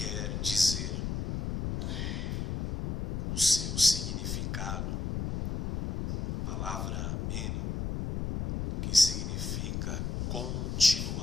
dizer, o seu significado, a palavra meno, que significa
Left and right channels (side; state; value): left; noise; rumble, 3 dB below the sound